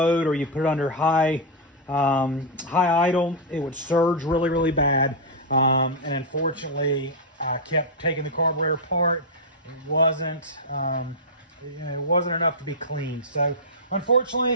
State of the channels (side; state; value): both; normal; correlation -0.05